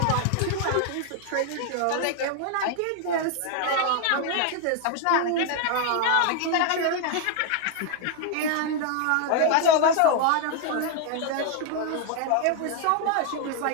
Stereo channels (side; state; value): both; different; correlation 0.00